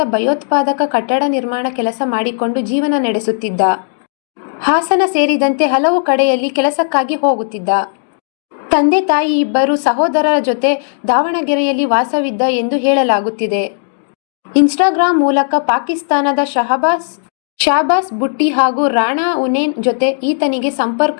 ಭಯೋತ್ಪಾದಕ ಕಟ್ಟಡ ನಿರ್ಮಾಣ ಕೆಲಸ ಮಾಡಿಕೊಂಡು ಜೀವನ ನಡೆಸುತ್ತಿದ್ದ. ಹಾಸನ ಸೇರಿದಂತೆ ಹಲವು ಕಡೆಯಲ್ಲಿ ಕೆಲಸಕ್ಕಾಗಿ ಹೋಗುತ್ತಿದ್ದ. ತಂದೆ ತಾಯಿ ಇಬ್ಬರು ಸಹೋದರರ ಜೊತೆ ದಾವಣಗೆರೆಯಲ್ಲಿ ವಾಸವಿದ್ದ ಎಂದು ಹೇಳಲಾಗುತ್ತಿದೆ. ಇನ್ಸ್ಟಾಗ್ರಾಂ ಮೂಲಕ ಪಾಕಿಸ್ತಾನದ ಶಹಬಾಸ್ ಬುಟ್ಟಿ ಹಾಗೂ ರಾಣಾ ಉನೇನ್ ಜೊತೆ ಈತನಿಗೆ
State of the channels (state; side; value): silent; right; digital silence